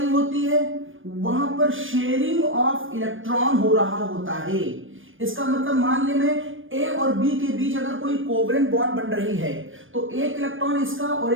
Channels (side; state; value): left; late; 0.58 ms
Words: होती है, वहां पर शेयरिंग ऑफ इलेक्ट्रॉन हो रहा होता है। इसका मतलब मान ले मैं ए और बी के बीच अगर कोई कोवलेंट बॉन्ड बन रही है तो एक इलेक्ट्रॉन इसका और